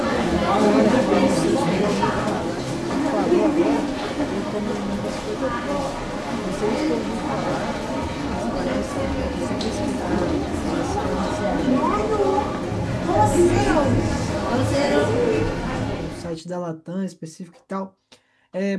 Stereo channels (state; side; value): identical; both; correlation 1.00